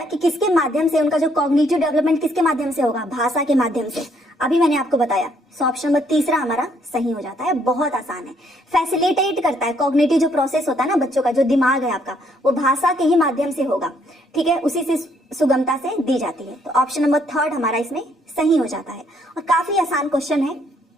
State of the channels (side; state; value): both; normal; correlation 0.69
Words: किसके माध्यम से, उनका जो कॉग्निटिव डेवलपमेंट किसके माध्यम से होगा, भाषा के माध्यम से। अभी मैंने आपको बताया, सो ऑप्शन नंबर तीसरा हमारा सही हो जाता है। बहुत आसान है, फैसिलिटेट करता है। कॉग्निटिव जो प्रोसेस होता है ना बच्चों का, जो दिमाग है आपका, वो भाषा के ही माध्यम से होगा, ठीक है, उसी से सुगमता से दी जाती है। तो ऑप्शन नंबर थर्ड हमारा इसमें सही हो जाता है और काफी आसान क्वेश्चन है,